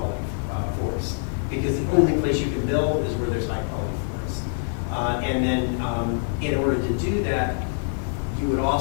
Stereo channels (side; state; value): right; silent; digital silence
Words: forests. Because the only place you can build is where there's high quality forests. And then in order to do that, you would